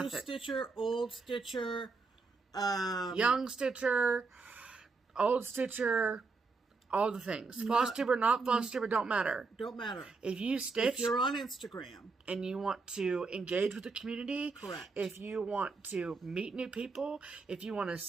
Stitcher, old Stitcher, young Stitcher, old Stitcher, all the things. FlossTuber, not FlossTuber, don't matter. Don't matter. If you stitch, if you're on Instagram and you want to engage with the community, correct. If you want to meet new people, if you want to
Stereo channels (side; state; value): left; quieter; 4.2 dB